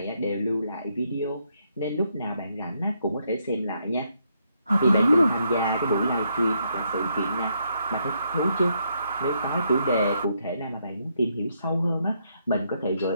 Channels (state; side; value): inverted; both; correlation -0.76